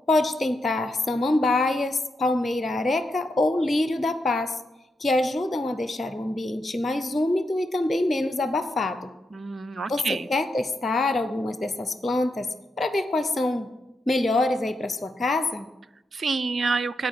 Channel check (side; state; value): both; normal; correlation 0.84